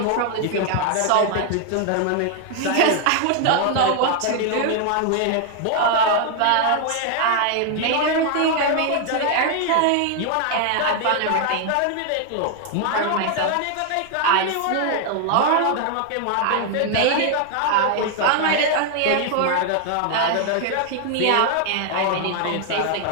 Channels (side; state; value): both; different; correlation 0.00